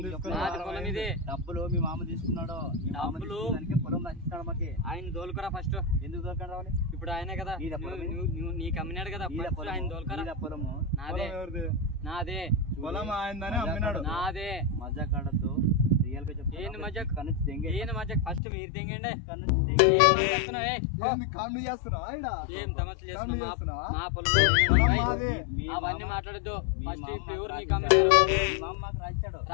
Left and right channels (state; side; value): drops out; right; at 18.4 s